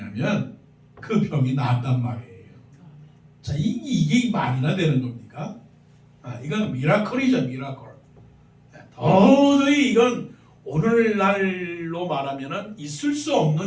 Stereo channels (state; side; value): identical; both; correlation 1.00